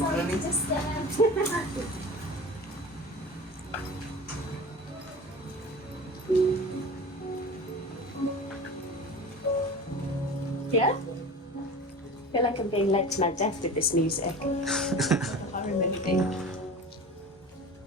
to disturb. Yeah? I feel like I'm being led to my death with this music. I remember being.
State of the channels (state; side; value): normal; both; correlation 0.35